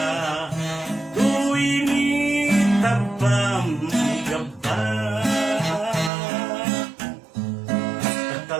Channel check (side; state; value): left; drops out; at 6.1 s